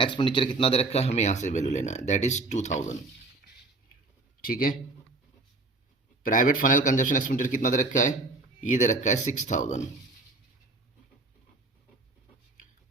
एक्सपेंडिचर कितना दे रखा है, हमें यहाँ से वैल्यू लेना है दैट इज 2,000, ठीक है। प्राइवेट फाइनल कंजप्शन एक्सपेंडिचर कितना दे रखा है, ये दे रखा है 6,000,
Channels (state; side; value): quieter; left; 3.3 dB